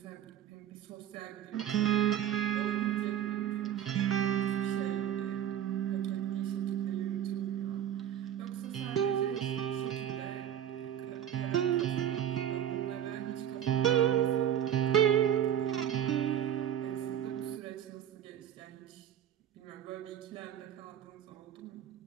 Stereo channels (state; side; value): quieter; left; 10.2 dB